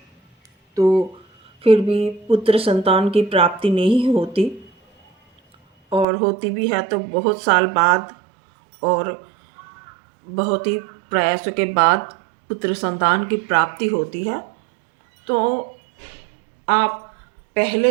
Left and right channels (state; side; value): drops out; left; at 6.1 s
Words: तो फिर भी पुत्र संतान की प्राप्ति नहीं होती, और होती भी है तो बहुत साल बाद और बहुत ही प्रयासों के बाद पुत्र संतान की प्राप्ति होती है। तो आप